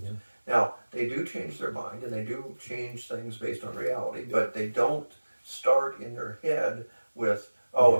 Yeah. Now, they do change their mind, and they do change things based on reality, but they don't start in their head with, it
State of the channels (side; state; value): both; inverted; correlation -1.00